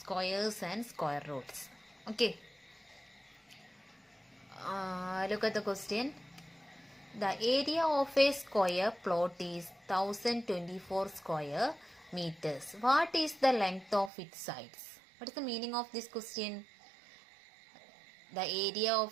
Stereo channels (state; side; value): drops out; left; at 14.1 s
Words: and square roots. Okay, look at the question. The area of a square plot is 1024 square meters. What is the length of its sides? What is the meaning of this question? The area